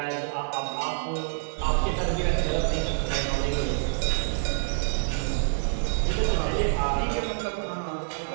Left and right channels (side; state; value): left; silent; digital silence